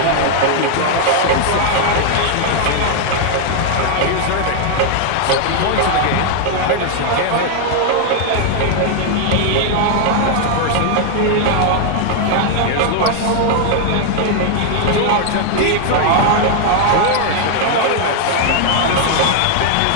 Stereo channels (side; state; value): both; different; correlation 0.00